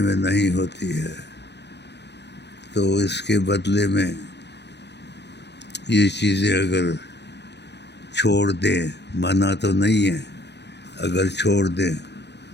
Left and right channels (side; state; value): right; late; 0.50 ms